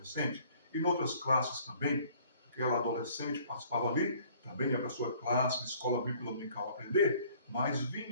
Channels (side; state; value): both; inverted; correlation -0.56